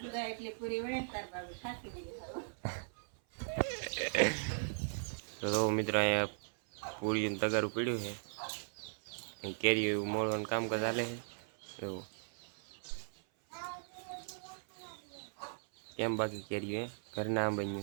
તો મિત્રો અહીંયા પૂરી તગારું પીડ્યું છે, કેરી મોળવાનું કામકાજ ચાલે છે. એવું કેમ બાકી કેરી ઘરના આમ બન્યું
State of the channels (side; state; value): left; silent; 52 dB below the other